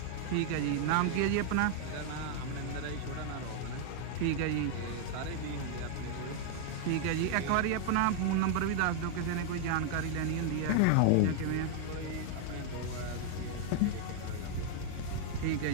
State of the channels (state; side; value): different; both; correlation 0.00